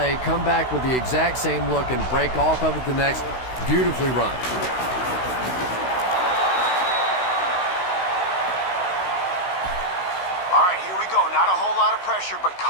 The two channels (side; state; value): right; late; 16 ms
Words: come back with the exact same look, and break off of it the next. Beautifully run. All right, here we go. Not a whole lot of pressure, but